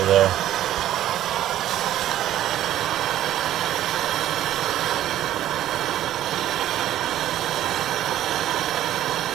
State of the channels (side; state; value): left; quieter; 12.7 dB